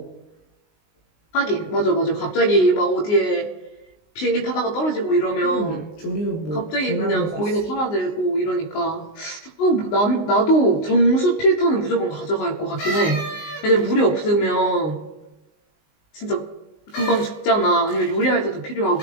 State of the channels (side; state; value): right; late; 19 ms